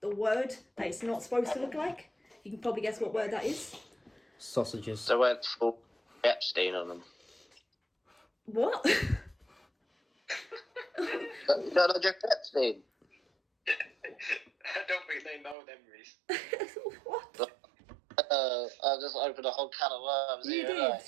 word that it's not supposed to look like. You can probably guess what word that is. Sausages. So went full Epstein on them. What? You don't know Jeff Epstein? I don't think they know them, Reese. What? I just opened a whole can of worms. You here, did. like,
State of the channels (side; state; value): left; drops out; at 15.6 s